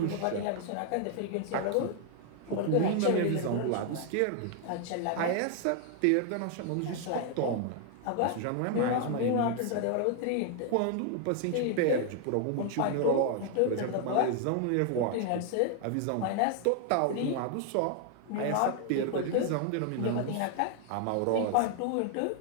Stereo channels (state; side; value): different; both; correlation 0.00